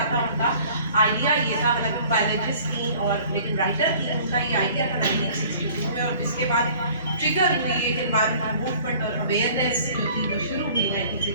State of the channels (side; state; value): both; inverted; correlation -0.51